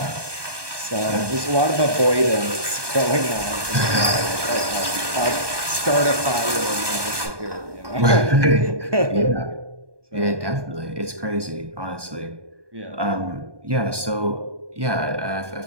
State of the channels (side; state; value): left; late; 1.2 ms